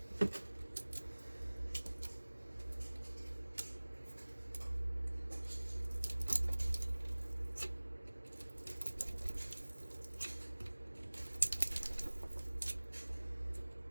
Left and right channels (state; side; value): inverted; both; correlation -1.00